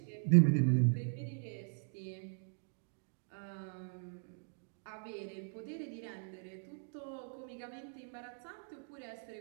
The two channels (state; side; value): silent; left; digital silence